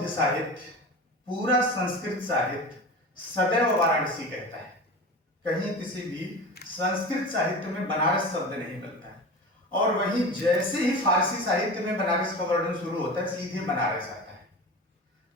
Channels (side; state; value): both; normal; correlation 0.31